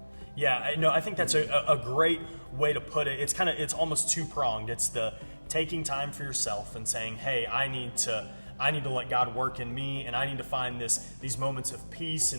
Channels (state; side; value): inverted; both; correlation -1.00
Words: I think that's a great way to put it. It's almost two-pronged. It's the taking time for yourself and saying, hey, I need to let God work in me, and I need to find these moments of peace